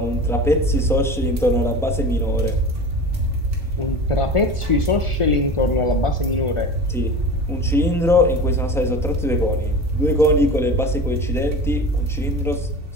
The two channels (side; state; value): both; normal; correlation 0.33